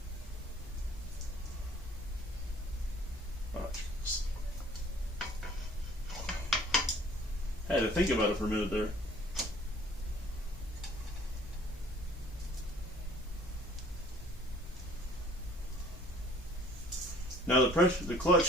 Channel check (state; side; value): normal; both; correlation 0.54